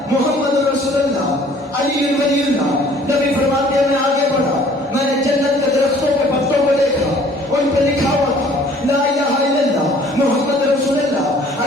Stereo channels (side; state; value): both; normal; correlation 0.55